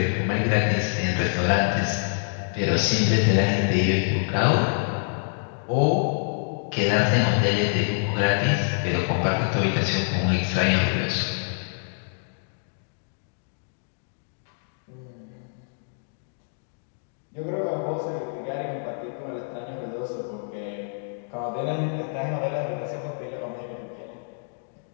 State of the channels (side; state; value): right; silent; digital silence